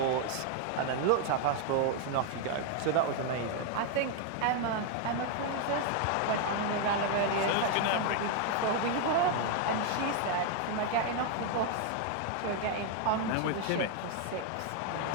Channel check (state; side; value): different; both; correlation 0.00